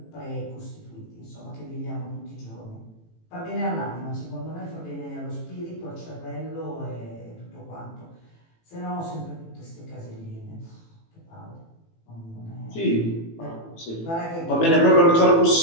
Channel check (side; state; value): right; late; 18 ms